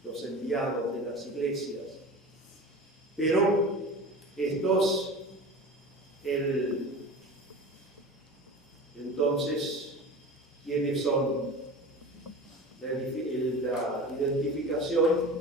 los enviados de las iglesias. Pero estos, entonces, ¿quiénes son? La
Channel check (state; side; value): normal; both; correlation 0.33